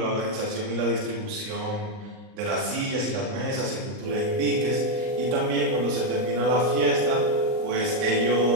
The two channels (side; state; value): left; late; 38 ms